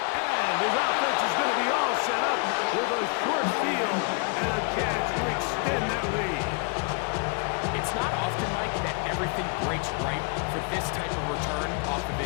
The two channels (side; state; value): right; quieter; 34.8 dB